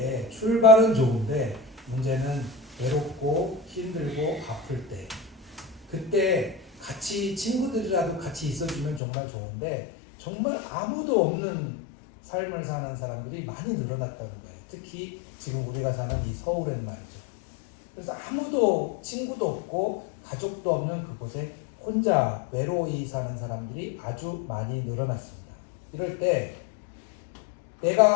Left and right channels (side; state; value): right; drops out; at 9.0 s